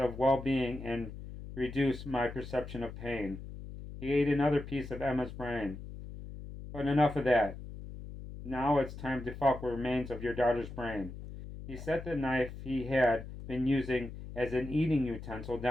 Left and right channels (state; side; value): noise; left; hum, 11 dB below the sound